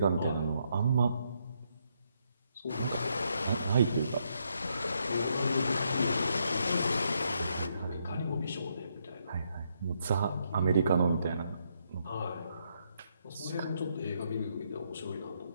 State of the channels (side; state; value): both; inverted; correlation -0.76